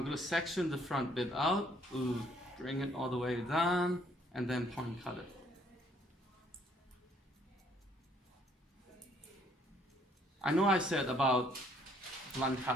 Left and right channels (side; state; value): both; normal; correlation 0.64